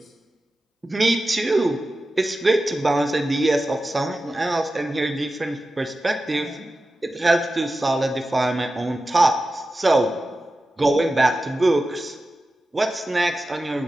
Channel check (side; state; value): both; normal; correlation 0.93